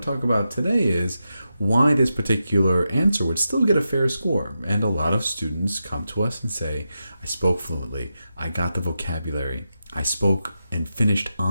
to talk about today is why this particular answer would still get a fair score. And a lot of students come to us and say, I spoke fluently, I got the vocabulary, I spoke and finished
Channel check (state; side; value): inverted; both; correlation -0.88